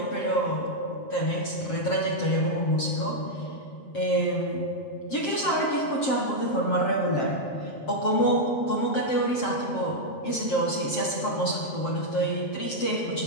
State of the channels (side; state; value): right; late; 7.6 ms